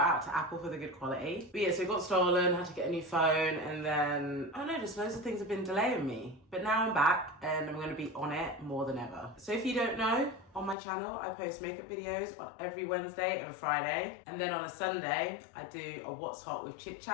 out to Apple for the good quality. But yeah, so it got stolen, had to get a new phone, and then, I don't know, just loads of things have been delaying me. But now I'm back and I'm gonna be on it more than ever. So if you don't know, on my channel, I post makeup videos on every Wednesday and Friday. And then on a Sunday, I do a What's Hot with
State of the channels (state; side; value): drops out; right; at 10.8 s